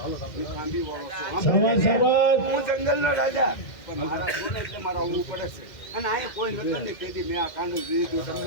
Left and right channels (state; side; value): late; right; 2.0 ms